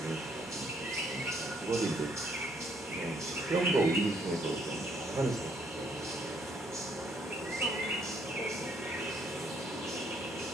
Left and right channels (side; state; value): both; normal; correlation 0.67